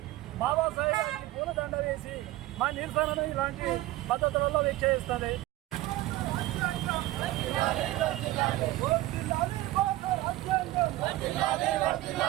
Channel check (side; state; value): left; quieter; 17.0 dB